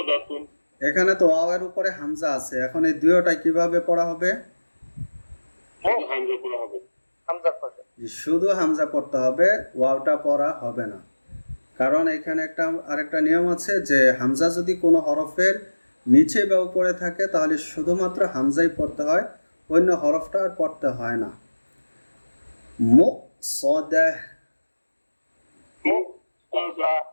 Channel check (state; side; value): inverted; both; correlation -1.00